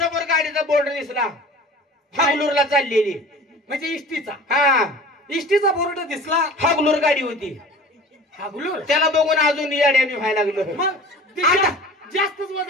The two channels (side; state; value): both; normal; correlation 0.41